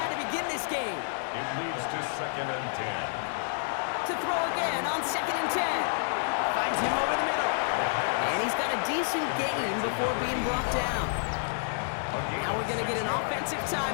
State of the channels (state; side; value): silent; right; digital silence